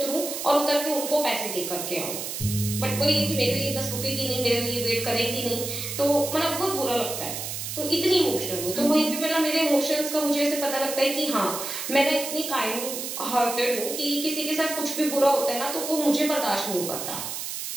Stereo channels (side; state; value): right; noise; hiss, 5 dB below the sound